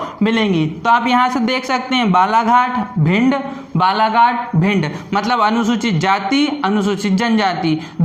मिलेंगी। तो आप यहां से देख सकते हैं बालाघाट भिंड, बालाघाट भिंड, मतलब अनुसूचित जाति अनुसूचित जनजाति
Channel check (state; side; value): identical; both; correlation 1.00